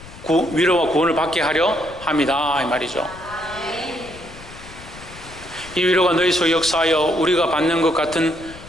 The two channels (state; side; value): noise; left; rumble, 18 dB below the sound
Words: 위로와 구원을 받게 하려 함이다 이 말이죠. 이 위로가 너희 속에 역사하여 우리가 받는 것 같은